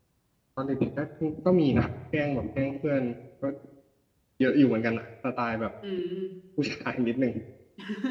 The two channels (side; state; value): both; identical; correlation 1.00